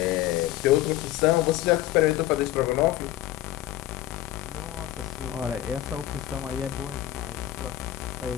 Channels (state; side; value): quieter; right; 14.2 dB